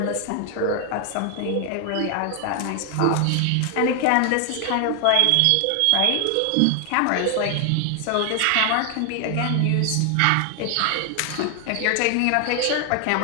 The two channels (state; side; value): different; both; correlation 0.00